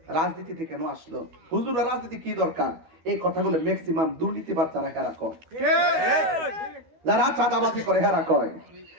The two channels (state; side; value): late; left; 13 ms